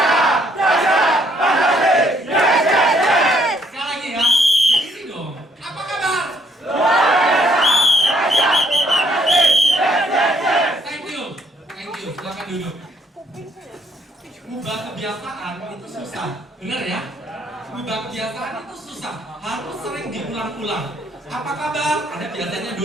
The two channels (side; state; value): both; normal; correlation 0.68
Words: Apa kabar? Anda biasanya